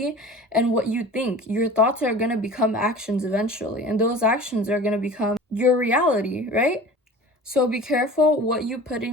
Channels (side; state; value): both; normal; correlation 0.40